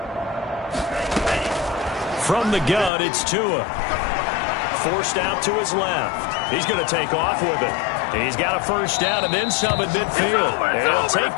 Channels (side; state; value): right; drops out; at 2.9 s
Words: From the gun, it's Tua. Forced out to his left. He's going to take off with it. He's got a first down and then some at midfield. And he'll take